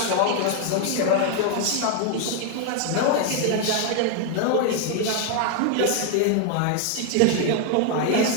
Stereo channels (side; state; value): both; different; correlation 0.00